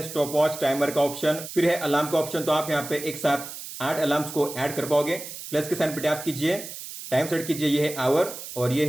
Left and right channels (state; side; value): noise; right; hiss, 11 dB below the sound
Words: स्टॉप वॉच, टाइमर का ऑप्शन, फिर है अलार्म का ऑप्शन। तो आप यहाँ पे एक साथ 8 अलार्म्स को ऐड कर पाओगे। प्लस के साइन पे टैप कीजिए, टाइम सेट कीजिए, ये है आवर और ये